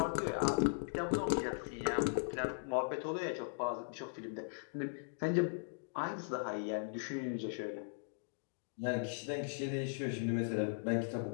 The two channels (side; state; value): right; silent; digital silence